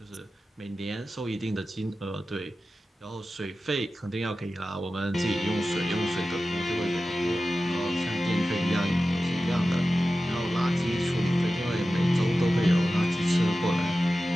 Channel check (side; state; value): both; normal; correlation 0.94